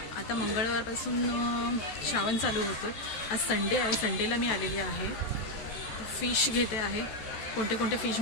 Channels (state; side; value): late; right; 14 ms